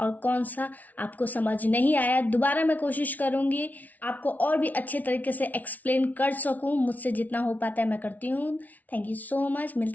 कौन सा आपको समझ नहीं आया। दोबारा मैं कोशिश करूंगी आपको और भी अच्छे तरीके से एक्सप्लेन कर सकूं। मुझसे जितना हो पाता है मैं करती हूँ। Thank you so much.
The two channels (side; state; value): right; late; 0.075 ms